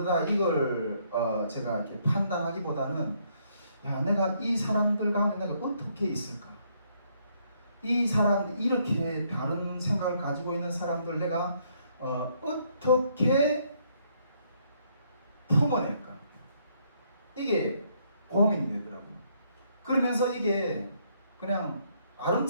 이걸 제가 이렇게 판단하기보다는 내가 이 사람들 가운데 내가 어떻게 있을까? 이 사람 이렇게 다른 생각을 가지고 있는 사람들 내가 어떻게 품어낼까? 이게 고민이 되더라고요. 그러면서 이게 그냥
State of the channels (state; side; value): inverted; both; correlation -0.70